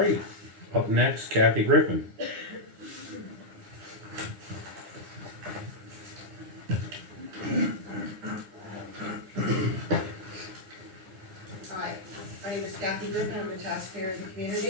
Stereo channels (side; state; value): left; late; 9.6 ms